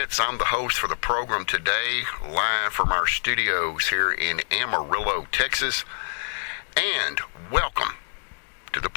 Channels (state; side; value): silent; right; 61 dB below the other